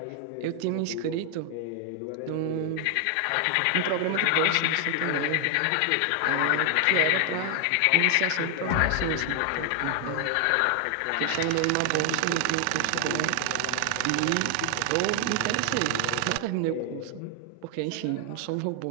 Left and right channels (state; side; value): different; both; correlation 0.00